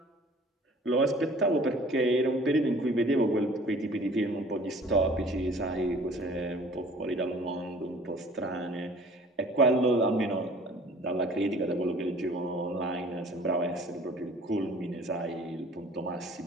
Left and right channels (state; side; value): normal; both; correlation 0.50